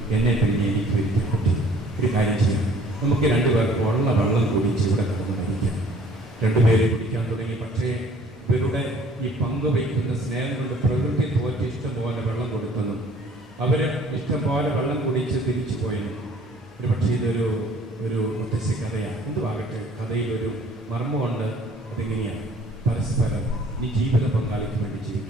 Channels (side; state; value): both; normal; correlation 0.54